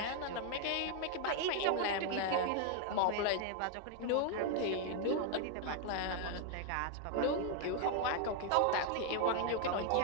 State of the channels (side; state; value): both; different; correlation 0.01